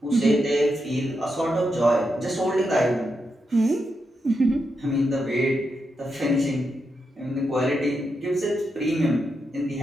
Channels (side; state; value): both; normal; correlation 0.85